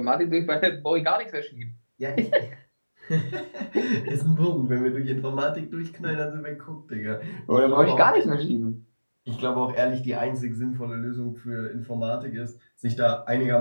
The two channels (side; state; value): both; inverted; correlation -1.00